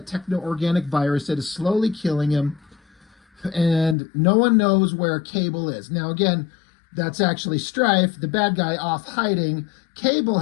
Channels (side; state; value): right; drops out; at 4.0 s